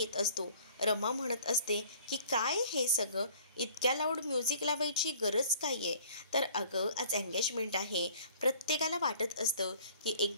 असतो. रमा म्हणत असते की काय हे सगळं, इतक्या लाऊड म्युझिक लावायची गरज काय आहे. तर अगं आज एंगेजमेंट आहे, प्रत्येकाला वाटत असतं की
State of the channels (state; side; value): inverted; both; correlation -0.53